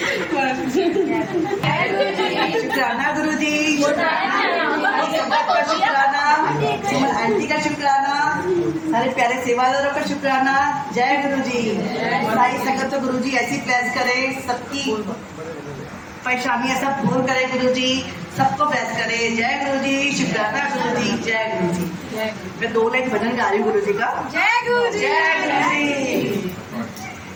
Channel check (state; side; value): identical; both; correlation 1.00